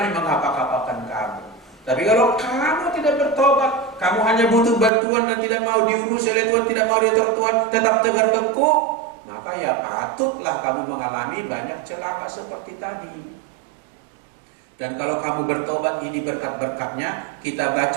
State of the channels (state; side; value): drops out; left; at 4.9 s